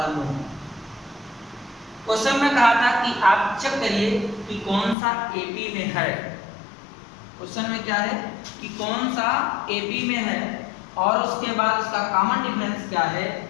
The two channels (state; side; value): drops out; right; at 5.0 s